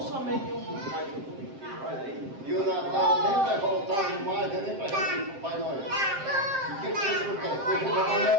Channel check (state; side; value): late; left; 7.6 ms